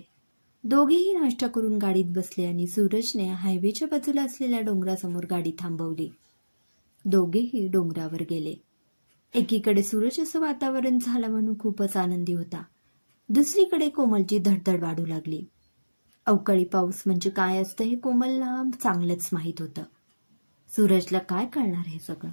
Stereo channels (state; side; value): inverted; both; correlation -1.00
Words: दोघेही नाश्ता करून गाडीत बसले आणि सूरजने हायवेच्या बाजूला असलेल्या डोंगरासमोर गाडी थांबवली. दोघेही डोंगरावर गेले. एकीकडे सूरज असं वातावरण झालं म्हणून खूपच आनंदी होता. दुसरीकडे कोमलची धडधड वाढू लागली. अवकाळी पाऊस म्हणजे काय असतं हे कोमलला चांगलंच माहीत होतं. सूरजला काय कळणार हे सगळं?